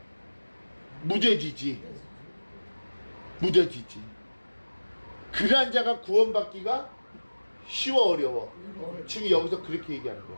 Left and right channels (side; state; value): both; inverted; correlation -1.00